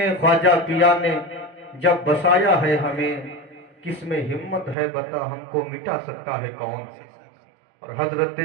خواجہ پیا نے جب بسایا ہے ہمیں، کس میں ہمت ہے بتا ہم کو مٹا سکتا ہے کون؟ اور حضرت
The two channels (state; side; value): drops out; left; at 4.8 s